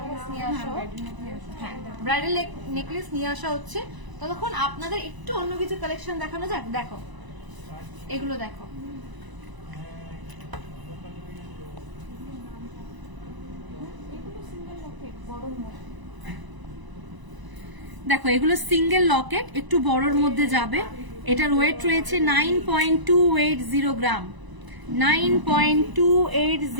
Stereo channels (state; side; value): late; left; 1.0 ms